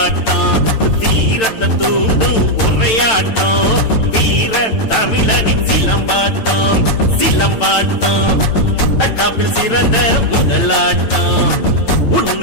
வீரத்தை தூண்டும் உரையாட்டம் வீர தமிழனின் சிலம்பாட்டம் சிலம்பாட்டம் தற்காப்பில் சிறந்த முதலாட்டம்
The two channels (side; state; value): right; late; 9.0 ms